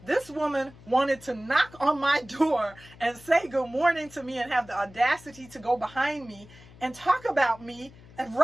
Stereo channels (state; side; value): noise; left; hum, 22 dB below the sound